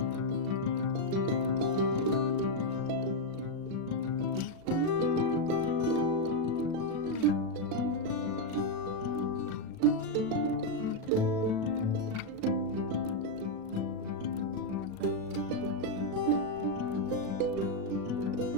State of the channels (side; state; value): left; late; 37 ms